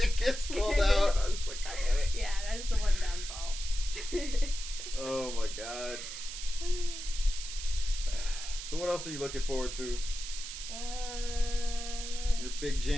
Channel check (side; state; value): right; noise; hiss, 8 dB below the sound